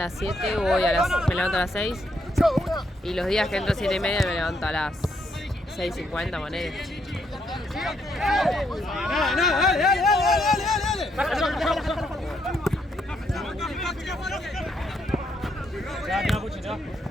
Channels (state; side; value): normal; both; correlation 0.75